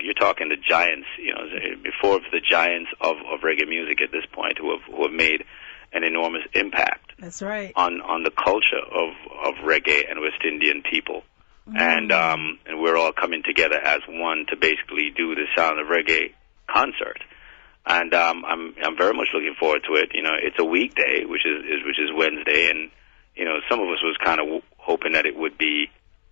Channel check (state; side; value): silent; right; digital silence